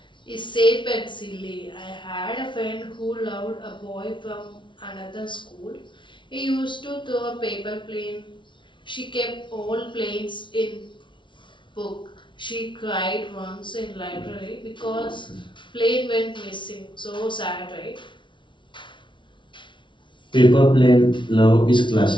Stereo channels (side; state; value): right; late; 0.24 ms